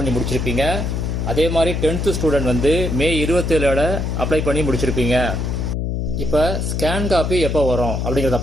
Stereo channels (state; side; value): noise; left; hum, 1 dB below the sound